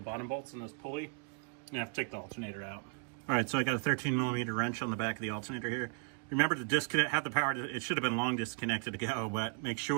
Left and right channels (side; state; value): left; quieter; 38.6 dB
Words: bolts in this pulley, you have to take the alternator out. All right, so I got a 13mm wrench on the back of the alternator here. Remember to disconnect, have the power, it should have been long disconnected to go, but make